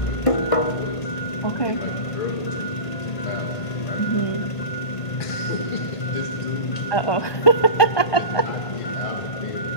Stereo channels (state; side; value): late; right; 1.5 ms